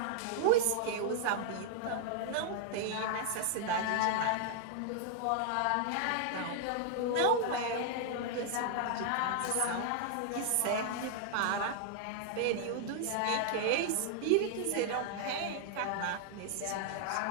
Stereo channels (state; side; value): different; both; correlation 0.00